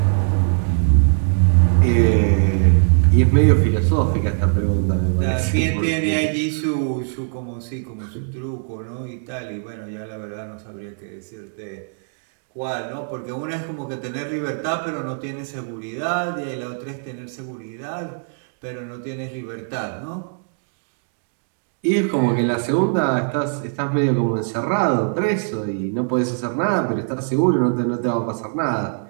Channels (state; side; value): silent; left; digital silence